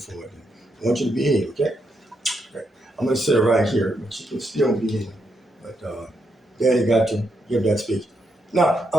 I want you to be here, okay? Okay. I'm gonna sit right here, but you can still be in. But Daddy got to give that speech. Now,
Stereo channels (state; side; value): normal; both; correlation 0.80